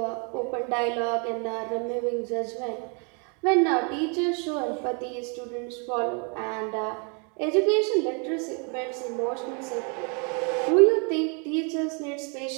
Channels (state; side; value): quieter; left; 36.5 dB